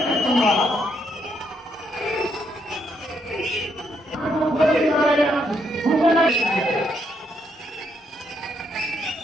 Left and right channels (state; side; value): normal; both; correlation 0.75